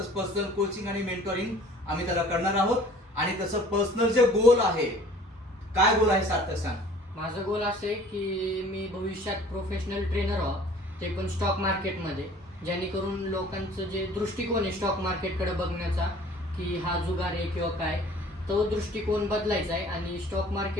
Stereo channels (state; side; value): normal; both; correlation 0.50